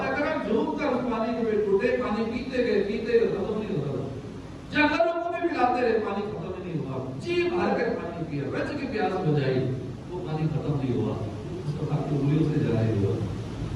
کرام جھوم کر اس پانی کے ٹوٹے، پانی پیتے گئے ختم نہیں ہوتا، جنگلوں کو بھی پلاتے رہے، پانی ختم نہیں ہوا، جی بھر کر پانی پیا، رج کی پیاس بجائی، وہ پانی ختم نہیں ہوا، اس کو آپ کی انگلیوں سے جاری ہوا۔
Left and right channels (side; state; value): both; identical; correlation 1.00